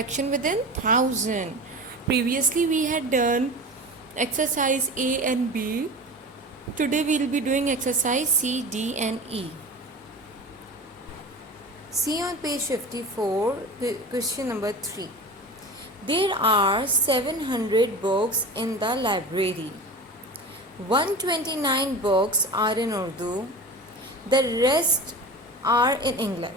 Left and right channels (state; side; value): normal; both; correlation 0.32